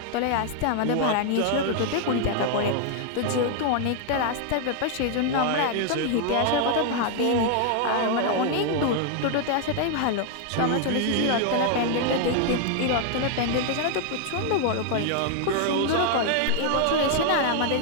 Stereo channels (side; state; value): both; different; correlation 0.00